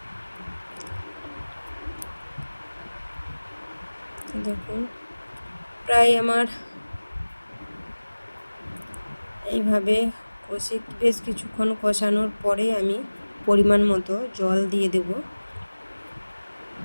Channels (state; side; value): inverted; both; correlation -1.00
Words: দেখুন প্রায় আমার এইভাবে বেশ কিছুক্ষণ কষানোর পরে আমি পরিমাণ মতো জল দিয়ে দেব।